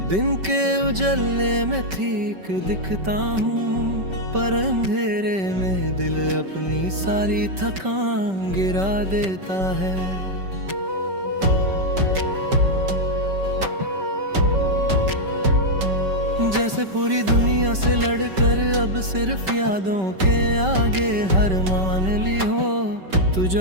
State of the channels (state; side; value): late; left; 5.2 ms